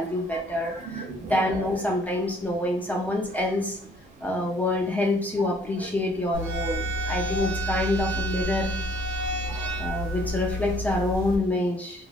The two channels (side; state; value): both; normal; correlation 0.61